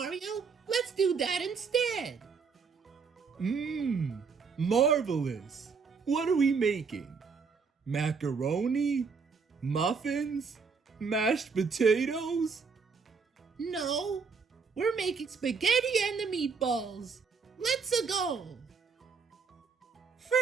Let's do that instead. Marvelous. What are we making? Macaroni? Muffins? Mashed potatoes? No, we're making spaghetti and the meatballs. Let's go.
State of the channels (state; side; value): quieter; left; 5.3 dB